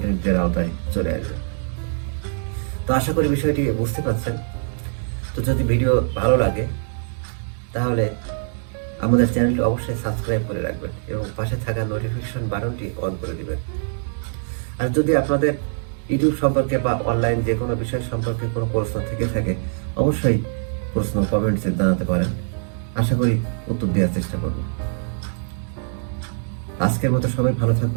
আওতায় চলে আসবে। তো আশা করি বিষয়টি বুঝতে পারছেন। তো যদি ভিডিও ভালো লাগে তাহলে আমাদের চ্যানেলটি অবশ্যই সাবস্ক্রাইব করে রাখবেন এবং পাশে থাকা নোটিফিকেশন বাটনটি অন করে দিবেন। আর যদি আপনাদের ইউটিউব সম্পর্কে বা অনলাইন যে কোনো বিষয় সম্পর্কে কোনো প্রশ্ন থেকে থাকে অবশ্যই প্রশ্ন কমেন্টসে জানাতে পারেন, আশা করি উত্তর দেওয়ার চেষ্টা করব। আজকের মতো সবাই ভালো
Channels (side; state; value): left; silent; 63 dB below the other